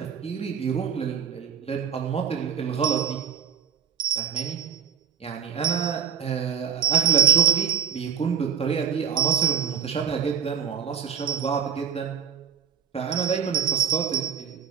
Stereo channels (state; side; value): quieter; left; 7.6 dB